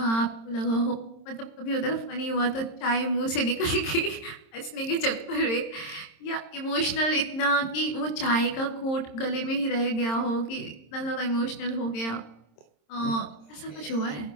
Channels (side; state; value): right; late; 26 ms